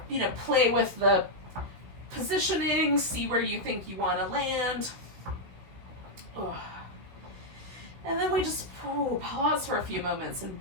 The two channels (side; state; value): left; late; 16 ms